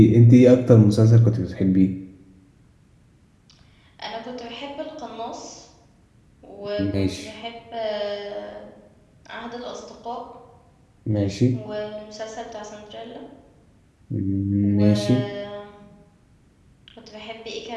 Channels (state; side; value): identical; both; correlation 1.00